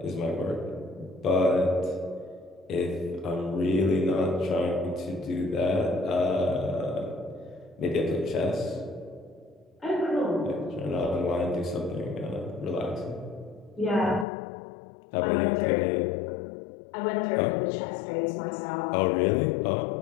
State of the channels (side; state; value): right; drops out; at 14.2 s